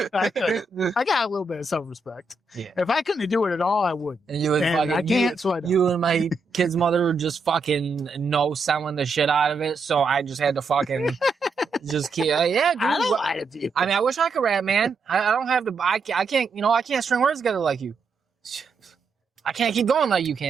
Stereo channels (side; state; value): left; quieter; 3.7 dB